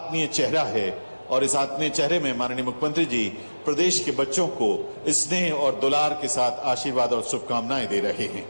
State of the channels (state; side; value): inverted; both; correlation -1.00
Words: चेहरा है और इस आत्मीय चेहरे में माननीय मुख्यमंत्री जी प्रदेश के बच्चों को स्नेह और दुलार के साथ आशीर्वाद और शुभकामनाएं दे रहे हैं।